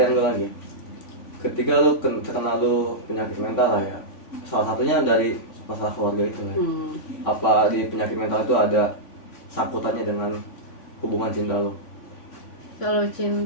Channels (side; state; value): right; late; 3.5 ms